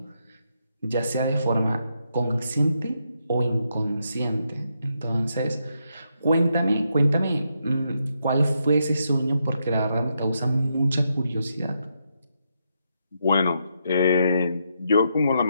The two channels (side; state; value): both; inverted; correlation -0.80